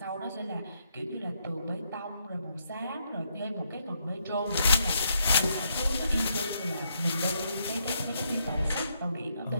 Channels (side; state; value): both; inverted; correlation -0.77